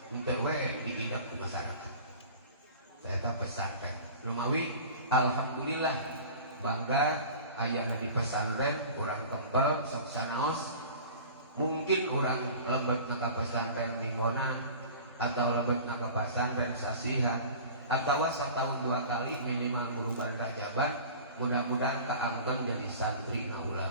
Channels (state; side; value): inverted; both; correlation -0.40